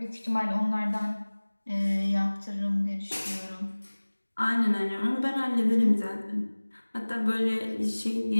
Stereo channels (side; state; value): both; inverted; correlation -1.00